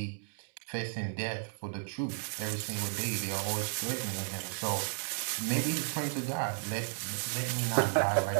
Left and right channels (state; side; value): silent; left; digital silence